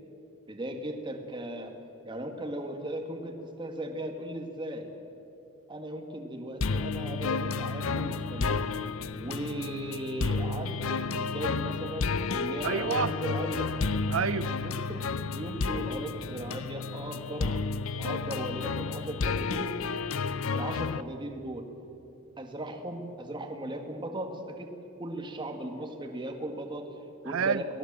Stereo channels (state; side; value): normal; both; correlation 0.33